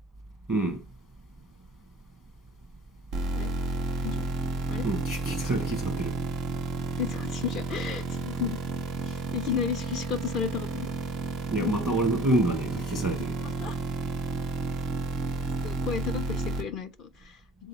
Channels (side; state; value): both; normal; correlation 0.47